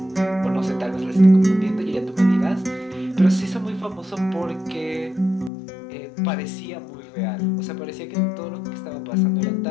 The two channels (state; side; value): drops out; right; at 5.5 s